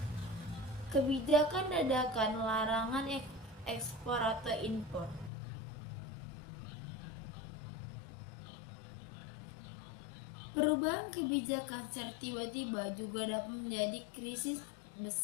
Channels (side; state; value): right; drops out; at 5.3 s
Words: Kebijakan dadakan larangan ekspor atau impor. Perubahan kebijakan secara tiba-tiba juga dapat menjadi krisis